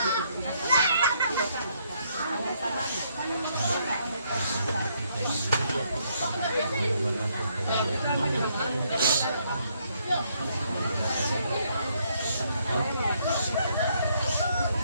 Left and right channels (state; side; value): inverted; both; correlation -0.71